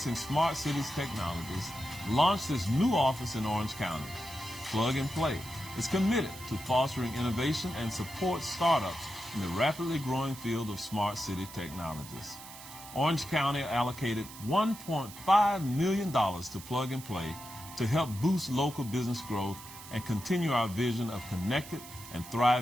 smart cities technologies, launched its new office in Orange County. Plug and Play is committed to fostering innovation and supports startups in the rapidly growing field of smart city technologies. Orange County allocated $1.5 million to Plug and Play to help boost local business growth and continue our vision of connected and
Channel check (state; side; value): noise; right; hiss, 15 dB below the sound